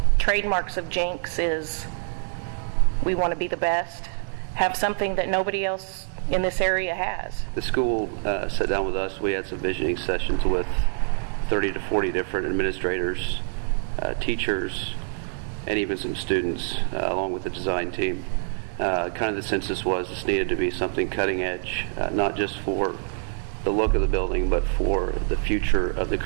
trademarks of Jenks is we want to be the best, have something that nobody else in this area has. The school sat down with us. We had some visioning sessions with 30 to 40 different administrators, teachers, and even some students, along with the design team. Kind of the census was this needed to be something cutting edge, not just for the look of the building, but for the future of the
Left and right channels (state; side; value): silent; left; digital silence